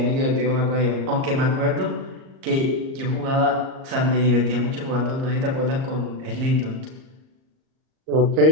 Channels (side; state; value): left; late; 38 ms